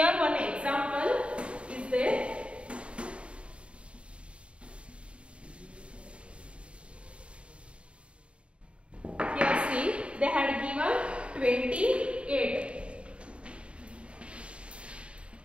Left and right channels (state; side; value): late; left; 0.059 ms